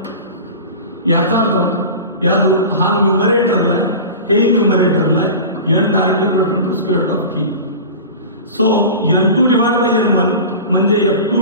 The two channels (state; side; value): inverted; both; correlation -0.32